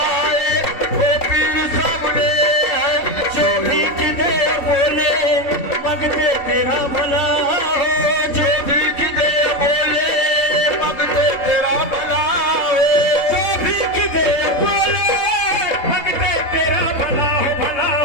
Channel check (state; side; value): late; right; 3.7 ms